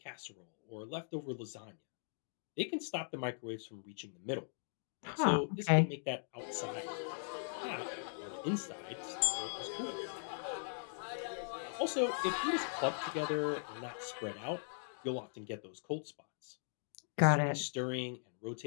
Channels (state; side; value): silent; right; digital silence